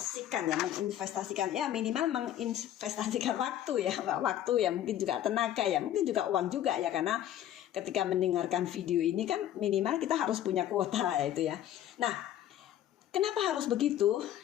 ya, minimal menginvestasikan waktu ya, mungkin juga tenaga ya, mungkin juga uang juga ya, karena ketika mendengarkan video ini kan minimal kita harus punya kuota itu ya. Nah, kenapa harus begitu?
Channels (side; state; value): right; quieter; 11.7 dB